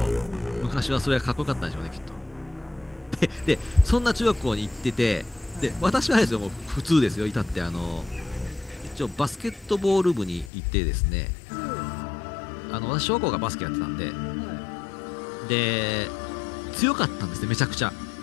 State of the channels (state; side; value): drops out; right; at 10.5 s